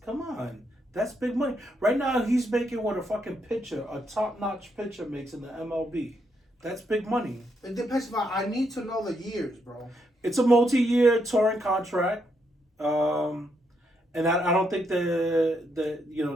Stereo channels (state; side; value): normal; both; correlation 0.78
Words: Come on, that's big money. Right now, he's making what a fucking pitcher, a top-notch pitcher, makes in the MLB. That's big money. It depends. I need to know the years, bro. It's a multi-year touring contract, and I don't think they're